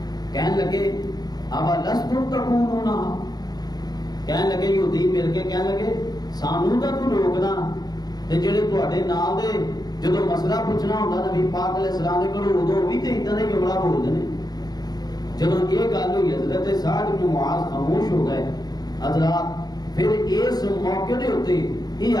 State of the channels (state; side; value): late; right; 0.19 ms